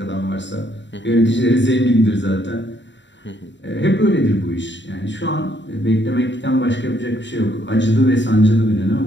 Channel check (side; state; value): right; late; 0.53 ms